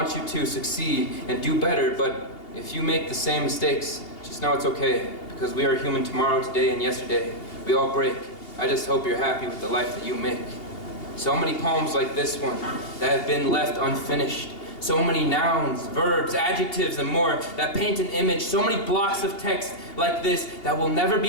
you to succeed and do better, but if you make the same mistakes, just know it's okay, because we are human tomorrow, today, and yesterday. We all break. I just hope you're happy with the life that you make. So many poems like this one that have been left unfinished. So many nouns, verbs, adjectives, and more that paint an image. So many blocks of text like this that will never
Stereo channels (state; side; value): late; right; 2.8 ms